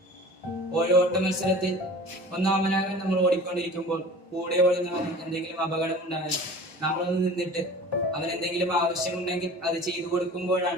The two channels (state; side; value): normal; both; correlation 0.41